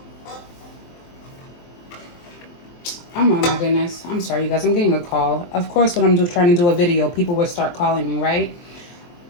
Oh my goodness. I'm sorry, you guys. I'm getting a call. Of course, when I'm trying to do a video, people will start calling me, right?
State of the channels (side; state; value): right; late; 23 ms